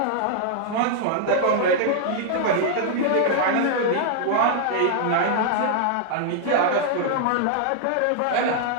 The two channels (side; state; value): both; different; correlation 0.00